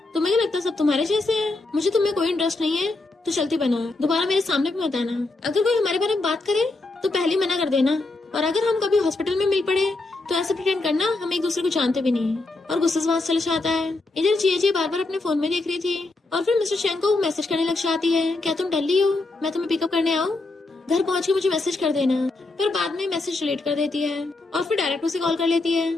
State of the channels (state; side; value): quieter; right; 3.1 dB